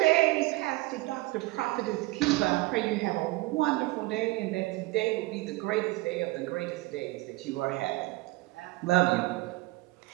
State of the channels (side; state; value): left; quieter; 21.0 dB